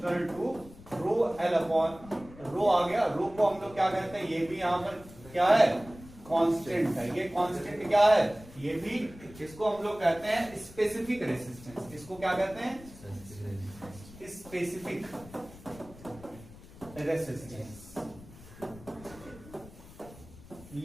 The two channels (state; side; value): noise; left; rumble, 19 dB below the sound